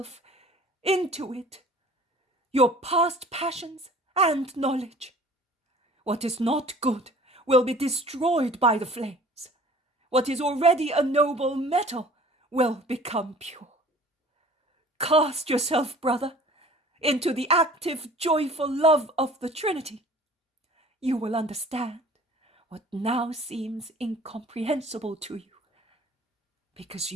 into it, your past passions and knowledge. What is not good will be destroyed by the flames. What is already a noble metal will become pure. Cast yourself, brother, into the active, joyful love of the Trinity. You will understand what now seems incomprehensible to you, because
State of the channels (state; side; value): normal; both; correlation 0.48